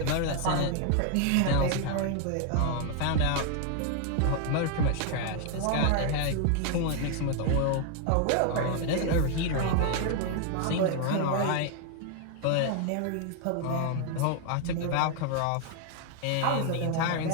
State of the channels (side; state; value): both; different; correlation 0.00